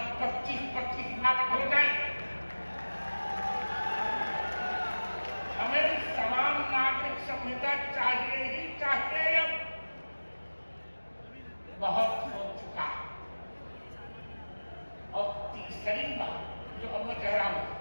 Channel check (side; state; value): both; inverted; correlation -1.00